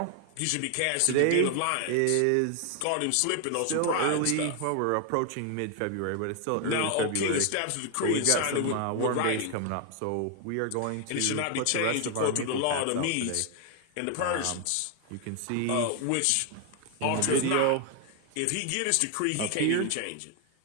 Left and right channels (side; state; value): both; different; correlation 0.00